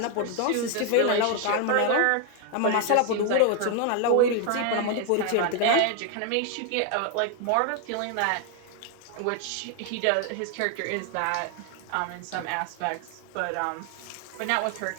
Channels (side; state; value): both; different; correlation 0.01